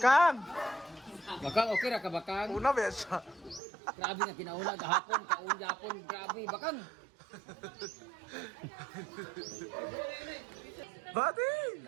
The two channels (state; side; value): drops out; left; at 3.6 s